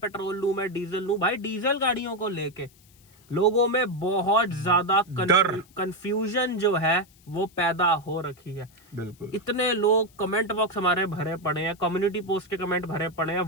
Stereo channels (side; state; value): left; noise; hiss, 29 dB below the sound